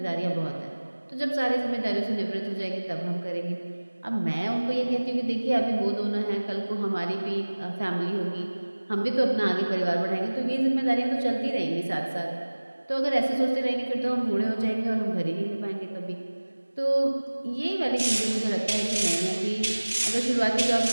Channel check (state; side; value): inverted; both; correlation -1.00